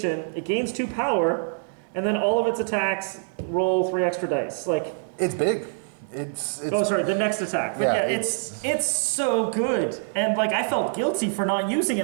it gains 2 power, and then all of its attacks roll 3 extra dice. It's big. It's oh, sorry, the next attack. But yeah, it's so good. And I felt guilty for not using it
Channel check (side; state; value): left; silent; digital silence